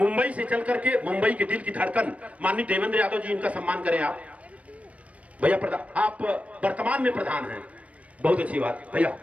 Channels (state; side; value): late; left; 0.065 ms